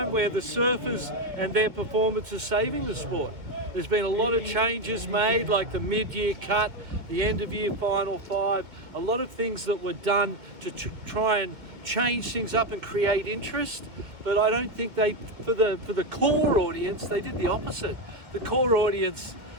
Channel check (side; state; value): left; late; 2.1 ms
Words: where the surfers and their performance is saving the sport. There's been a lot of changes made, like the mid-year cut, the end-of-year final five, a lot of things that were done to try and change things up and create interest. But I don't think for the core audience, they did the opposite. The core audience,